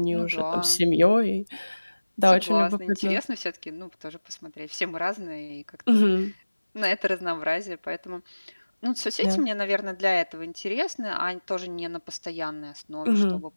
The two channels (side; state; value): both; inverted; correlation -1.00